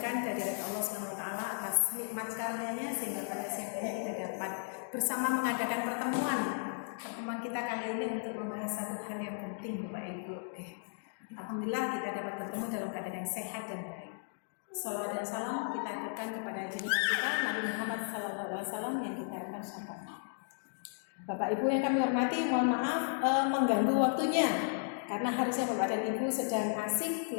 dari Allah SWT atas nikmat karunia-Nya sehingga pada siang ini kita dapat bersama mengadakan pertemuan kita kali ini untuk membahas satu hal yang penting, Bapak Ibu. Alhamdulillah kita dapat bertemu dalam keadaan yang sehat dan baik. Salawat dan salam kita aturkan kepada junjungan kita Nabi Muhammad SAW yang kita akan syafaat. Bapak Ibu yang kami hormati, mohon maaf mengganggu waktunya. Karena harusnya Bapak dan Ibu sedang asik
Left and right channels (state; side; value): silent; right; digital silence